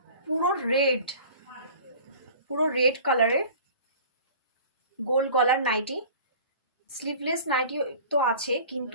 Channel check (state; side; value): inverted; both; correlation -0.43